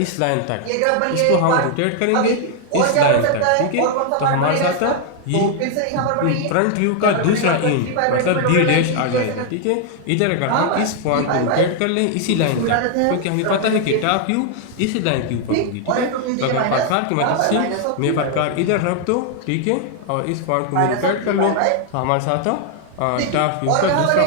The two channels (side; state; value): both; different; correlation 0.00